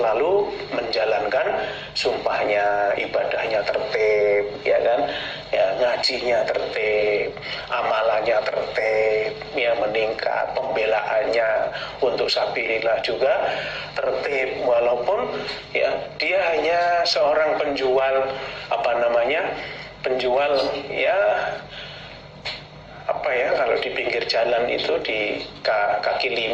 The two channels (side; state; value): both; identical; correlation 1.00